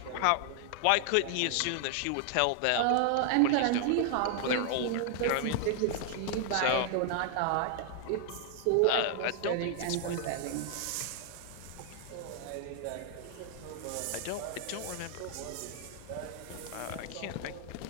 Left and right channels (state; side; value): different; both; correlation 0.00